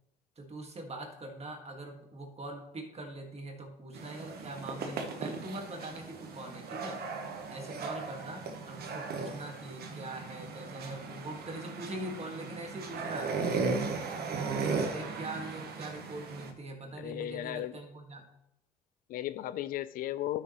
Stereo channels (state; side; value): normal; both; correlation 0.33